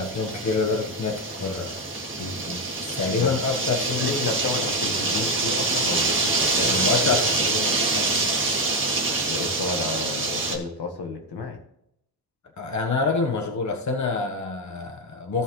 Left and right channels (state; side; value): normal; both; correlation 0.08